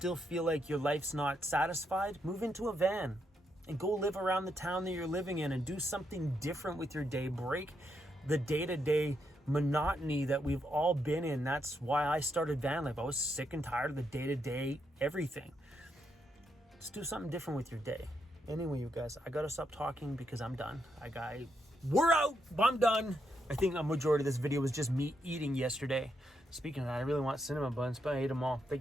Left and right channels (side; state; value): both; normal; correlation 0.80